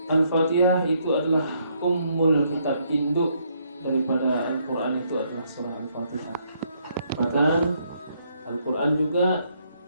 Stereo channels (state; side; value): inverted; both; correlation -0.72